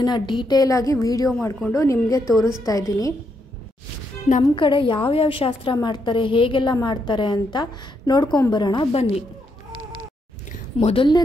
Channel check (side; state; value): both; normal; correlation 0.78